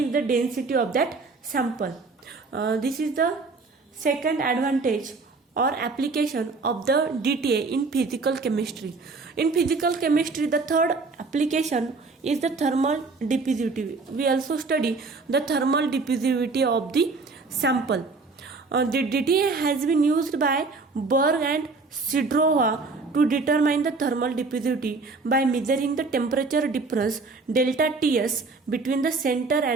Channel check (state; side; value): quieter; left; 4.0 dB